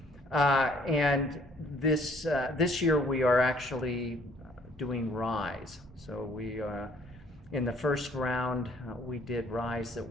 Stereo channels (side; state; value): both; normal; correlation 0.60